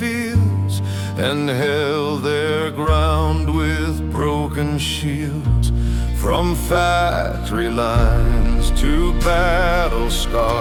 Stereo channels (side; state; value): both; identical; correlation 1.00